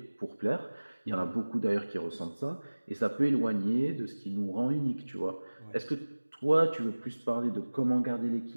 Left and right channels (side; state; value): both; inverted; correlation -1.00